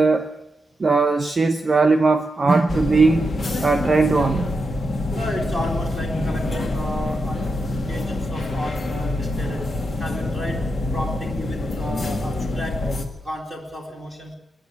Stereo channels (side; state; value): both; normal; correlation 0.86